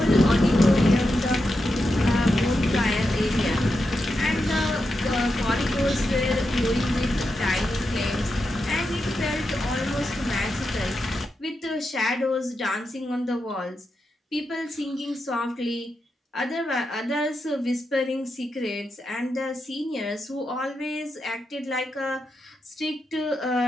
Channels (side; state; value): both; normal; correlation 0.87